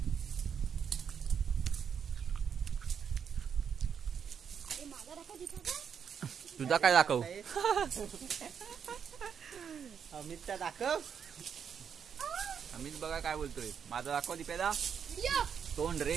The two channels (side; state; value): left; quieter; 7.4 dB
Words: तुझा काय दाखव. अमितचा दाखव. अमित बघा काय बोलतोय. माझा दाखव दीपेदा तोंड